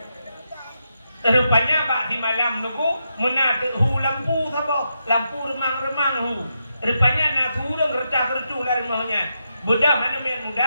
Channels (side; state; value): both; inverted; correlation -0.84